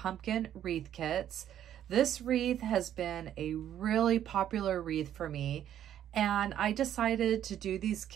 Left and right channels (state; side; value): quieter; left; 10.7 dB